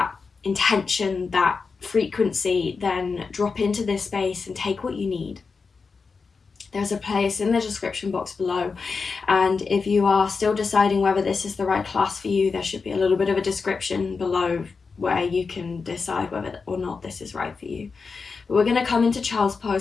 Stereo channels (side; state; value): right; quieter; 4.8 dB